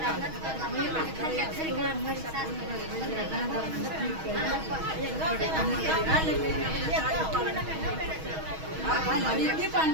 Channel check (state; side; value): late; left; 6.3 ms